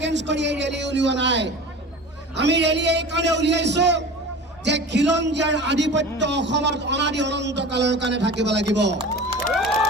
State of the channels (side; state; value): both; normal; correlation 0.36